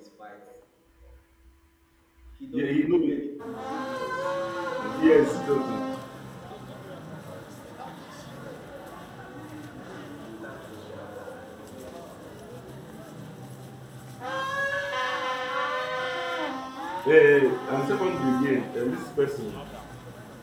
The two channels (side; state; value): both; identical; correlation 1.00